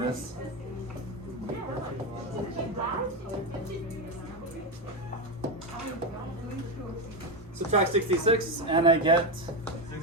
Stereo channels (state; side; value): normal; both; correlation 0.11